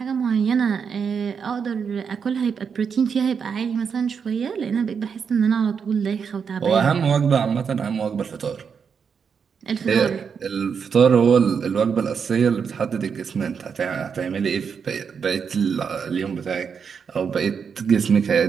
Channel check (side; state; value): left; quieter; 6.4 dB